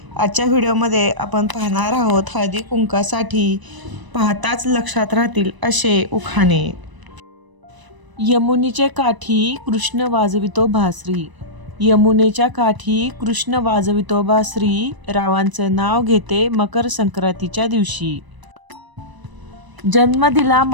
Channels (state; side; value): late; left; 1.0 ms